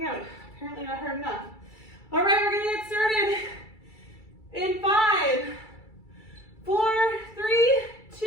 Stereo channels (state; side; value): late; right; 2.3 ms